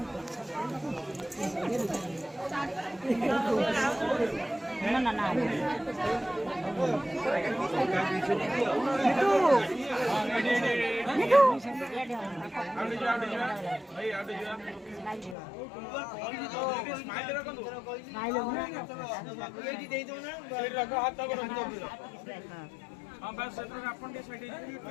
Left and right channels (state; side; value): drops out; right; at 15.4 s